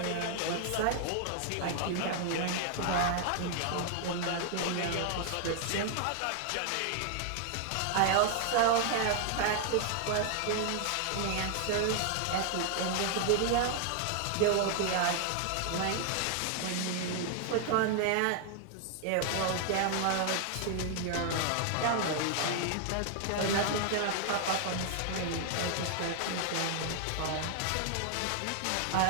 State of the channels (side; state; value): both; different; correlation 0.00